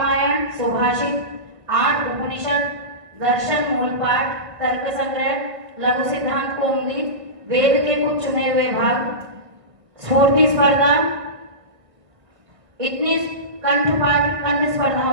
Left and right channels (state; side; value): late; left; 1.7 ms